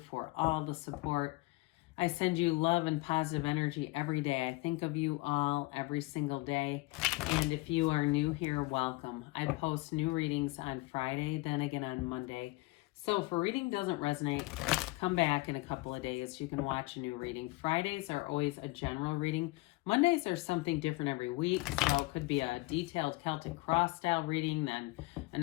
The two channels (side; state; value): right; quieter; 22.6 dB